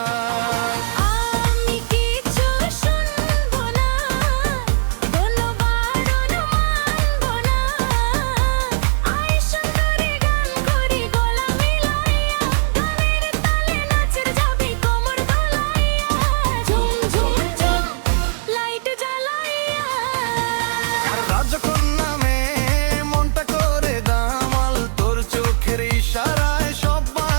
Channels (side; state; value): left; silent; digital silence